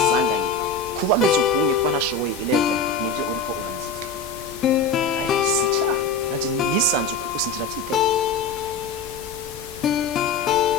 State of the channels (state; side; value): quieter; right; 3.9 dB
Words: kuba meze ukunye kuba ntashoboye 11 nibyo uriko uranziza ariko si icaha nanje nisanze uko usinjira byiteye